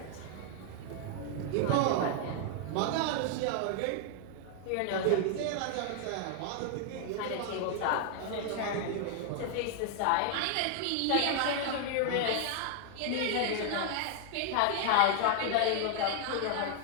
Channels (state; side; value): different; both; correlation 0.00